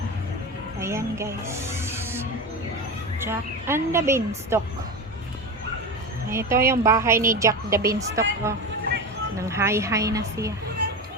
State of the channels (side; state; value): both; normal; correlation 0.23